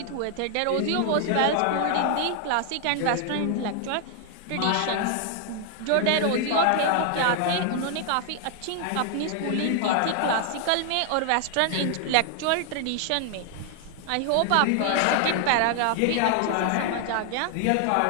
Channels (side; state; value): both; different; correlation 0.00